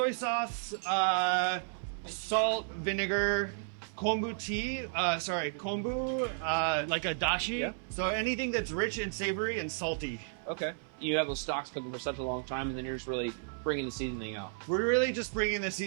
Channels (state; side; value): silent; left; 56 dB below the other